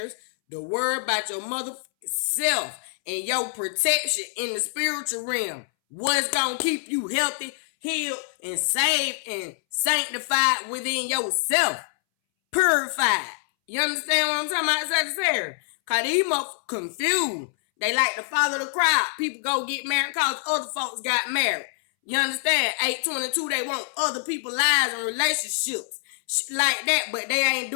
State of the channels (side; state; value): right; silent; 62 dB below the other